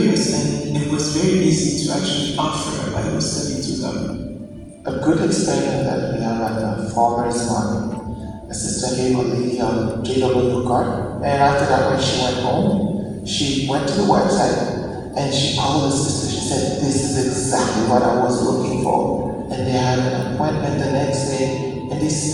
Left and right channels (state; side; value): identical; both; correlation 1.00